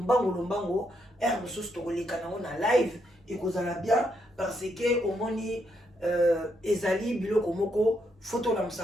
mosusu tokoleka nango na live ekozala bien parce que omoni ezali biloko moko photo la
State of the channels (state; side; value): normal; both; correlation 0.77